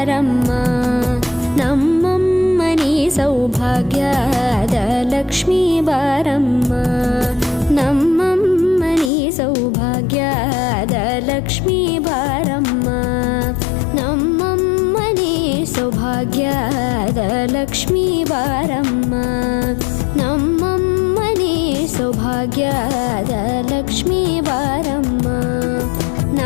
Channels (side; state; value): right; drops out; at 9.1 s